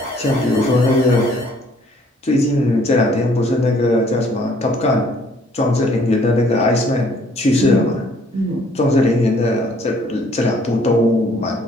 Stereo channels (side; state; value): both; normal; correlation 0.61